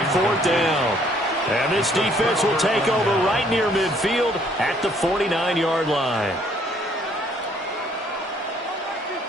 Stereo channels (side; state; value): both; normal; correlation 0.63